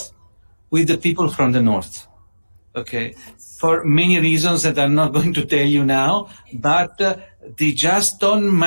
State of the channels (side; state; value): both; inverted; correlation -1.00